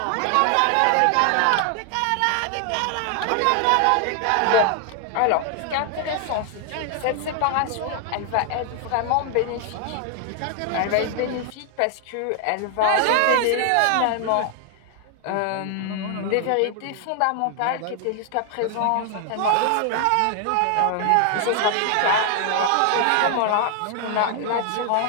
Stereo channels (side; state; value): both; different; correlation 0.00